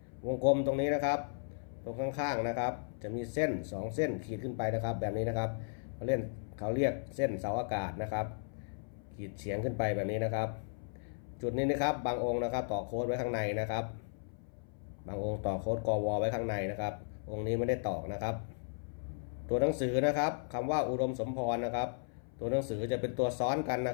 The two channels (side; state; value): right; silent; 54 dB below the other